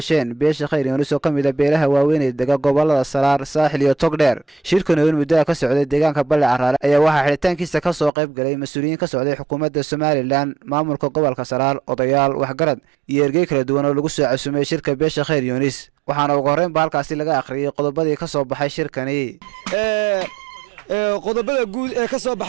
beesha Khayr Yoonis oo kamid ah beelaha waaweyn ee dega gobolada Saraar, Saaxil iyo Togdheer. Shirkan oo muddo ka socday deegaanka Balle Caraale ayaa waxaa xiritaankiisa ka soo qayb galay mas'uuliyiin ka socday xukuumadda Somaliland, maamulka gobolka Saraar, odayaal, waxgarad iyo ergey kala duwan oo lagu soo casuumay shirka beesha Khayr Yoonis. waxaana ugu horreyn halkaasi laga akhriyay qodobadii ka soo baxay shirkani. qodobada guud ee ka soo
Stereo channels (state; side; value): drops out; left; at 8.1 s